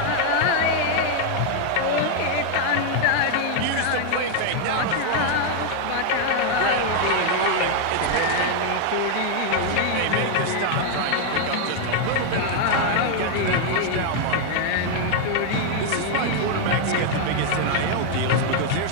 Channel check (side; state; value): both; different; correlation 0.00